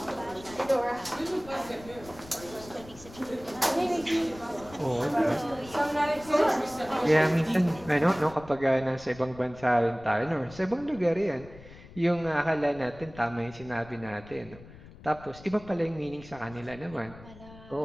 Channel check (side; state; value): left; noise; rumble, 19 dB below the sound